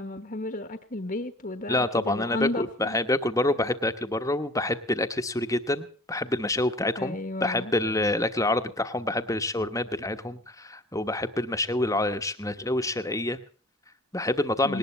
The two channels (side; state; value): both; normal; correlation 0.46